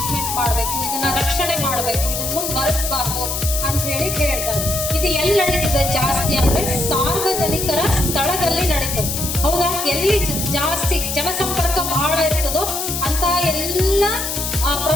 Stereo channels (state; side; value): noise; left; hiss, 3 dB below the sound